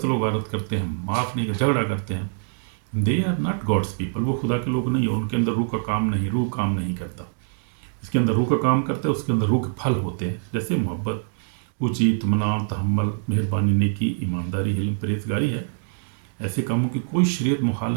वारत करते हैं, माफ़ नहीं, झगड़ा करते हैं। They are not God's people, वो खुदा के लोग नहीं, और उनके अंदर रूह का काम नहीं, रूह काम नहीं करता। इसके अंदर रूह का काम करता है, उसके अंदर रूह के फल होते हैं, जैसे मोहब्बत, ऊँची, इत्मीनान, तहम्मुल, मेहरबानी, नेकी, ईमानदारी, हिल्म, परहेज़गारी है। ऐसे कामों की कोई शरीयत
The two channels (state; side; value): silent; left; digital silence